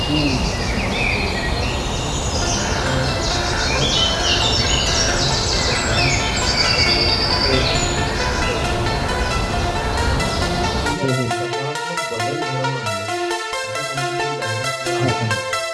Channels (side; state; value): both; identical; correlation 1.00